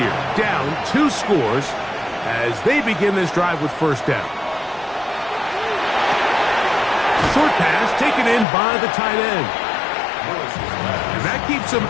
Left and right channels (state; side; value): drops out; right; at 8.5 s